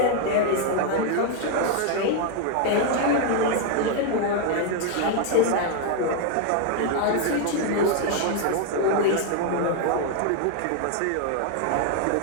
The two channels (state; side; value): different; both; correlation 0.00